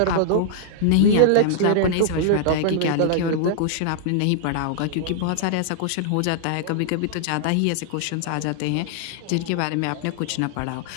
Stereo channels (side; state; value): both; different; correlation -0.01